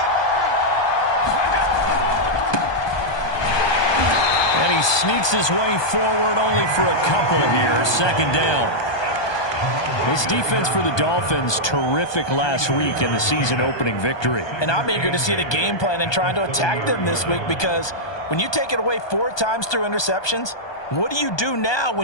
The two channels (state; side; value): late; right; 1.2 ms